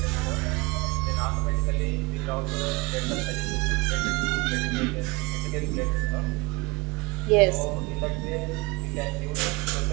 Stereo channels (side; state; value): left; quieter; 27.6 dB